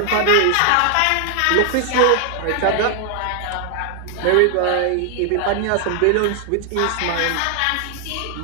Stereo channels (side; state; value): both; different; correlation 0.00